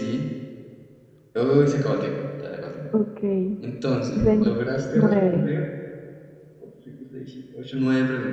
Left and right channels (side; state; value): both; identical; correlation 1.00